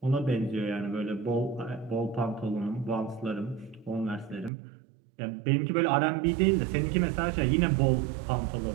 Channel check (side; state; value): left; drops out; at 4.5 s